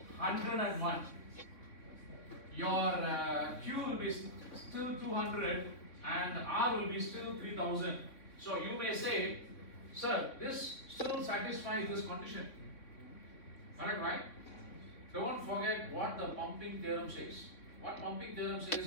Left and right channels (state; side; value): late; right; 3.6 ms